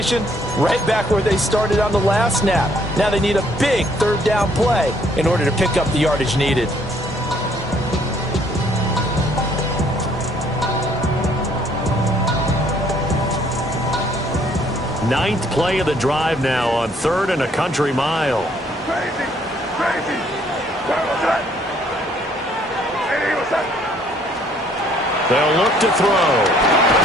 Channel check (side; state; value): both; normal; correlation 0.64